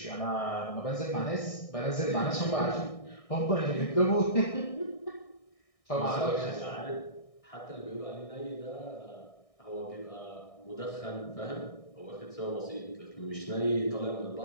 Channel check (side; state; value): right; late; 1.6 ms